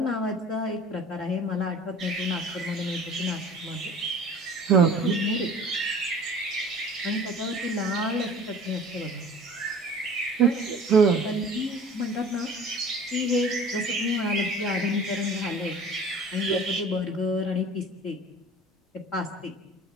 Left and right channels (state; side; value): normal; both; correlation 0.45